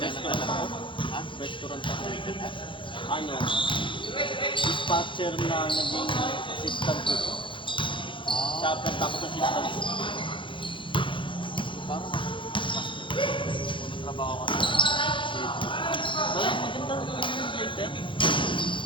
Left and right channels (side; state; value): right; late; 0.24 ms